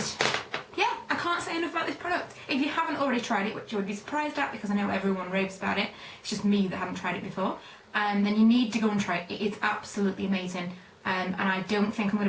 yeah, I can't say enough about this product. If you haven't already tried it, which you would be surprised at because I know everyone raves about it, it's just me that haven't tried it before, then you need to go and try it. It is absolutely amazing, and I don't think I'm going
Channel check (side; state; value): both; identical; correlation 1.00